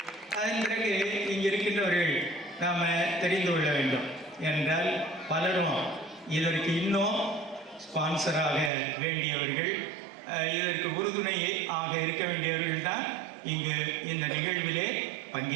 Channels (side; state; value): left; drops out; at 8.7 s